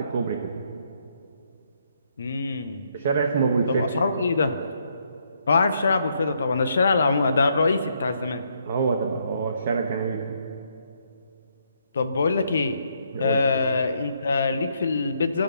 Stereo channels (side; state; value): both; inverted; correlation -0.74